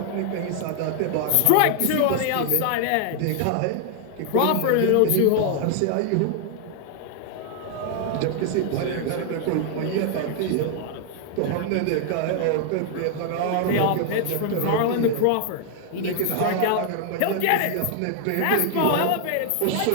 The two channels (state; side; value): different; both; correlation 0.00